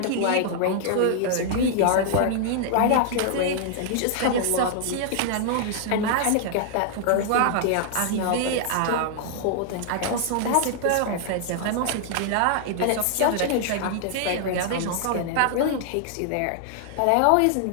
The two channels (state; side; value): different; both; correlation -0.01